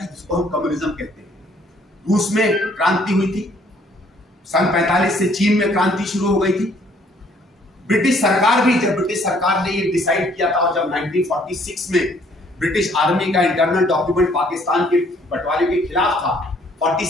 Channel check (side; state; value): both; normal; correlation 0.62